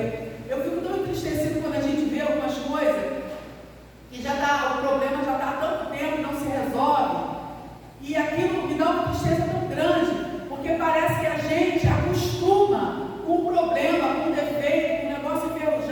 Eu fico tão entristecido quando a gente vê algumas coisas que o problema já está há tanto tempo e não se resolve, e aquilo me dá uma tristeza tão grande, porque parece que a gente acostuma com um problema, com um defeito, com um negócio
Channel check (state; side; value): identical; both; correlation 1.00